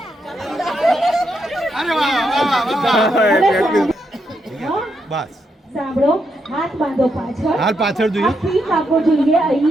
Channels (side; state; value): both; normal; correlation 0.81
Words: બસ સાંભળો, હાથ બાંધો પાછળ. હાલ પાછળ જોઈએ. ઠીક આગો જોઈએ